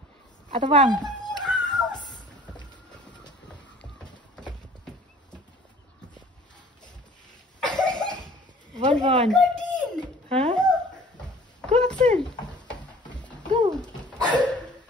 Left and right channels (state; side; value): normal; both; correlation 0.50